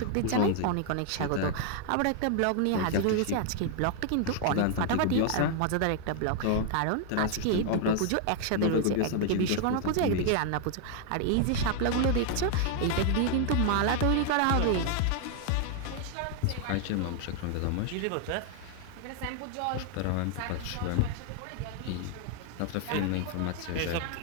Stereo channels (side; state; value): both; different; correlation 0.00